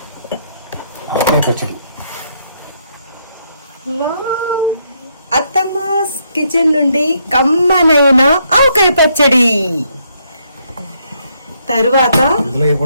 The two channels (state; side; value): inverted; both; correlation -0.74